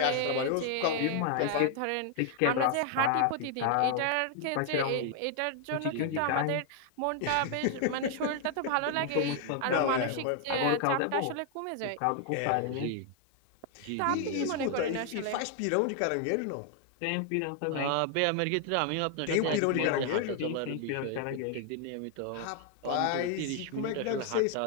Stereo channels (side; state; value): both; different; correlation 0.00